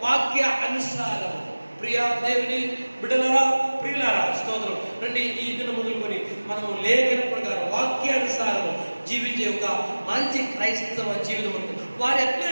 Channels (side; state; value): both; inverted; correlation -1.00